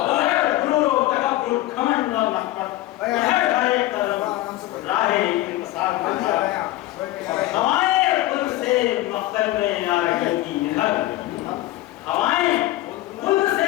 غرور و تکبر گھمنڈ اور نخوت ادھر ہر ایک قدم راہ انتصار میں تھا ہوائیں پل سے مقتل میں آ رہی تھی ادھر ہوائیں پل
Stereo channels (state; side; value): quieter; right; 16.5 dB